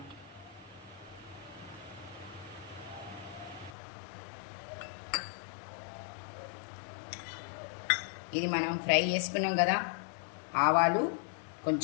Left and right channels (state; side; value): drops out; right; at 3.8 s